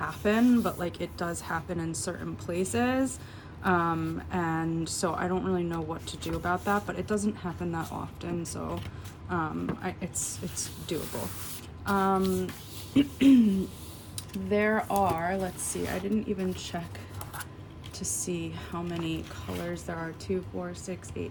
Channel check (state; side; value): identical; both; correlation 1.00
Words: but like it does happen in certain places, and so I don't really know what to do about that, but it doesn't happen that often, so it's doable. There are, let's see, I didn't even check to see how many colors there are. 2, 4, 6,